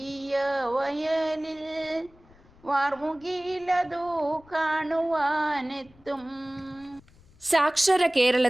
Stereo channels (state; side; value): noise; left; rumble, 27 dB below the sound